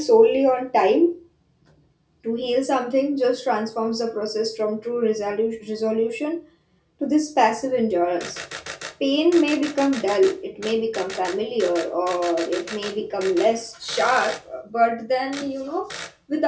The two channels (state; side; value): identical; both; correlation 1.00